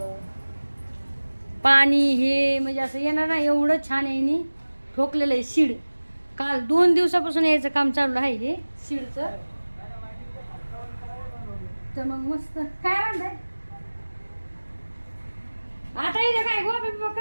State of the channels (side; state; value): both; inverted; correlation -1.00